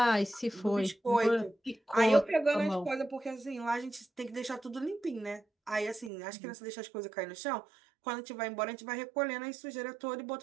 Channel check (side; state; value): left; drops out; at 6.1 s